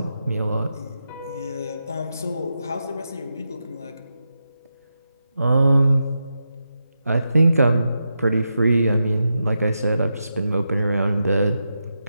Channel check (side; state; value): both; inverted; correlation -0.87